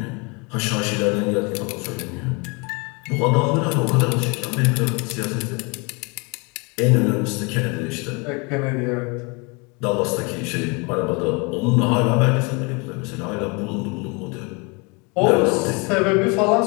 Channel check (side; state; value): right; quieter; 30.0 dB